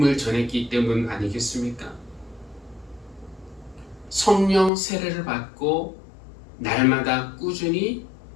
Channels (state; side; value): drops out; right; at 4.7 s